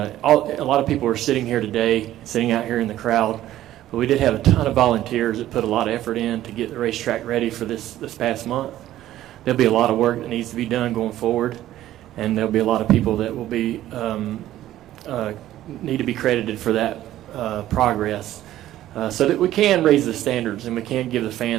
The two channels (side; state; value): left; quieter; 13.6 dB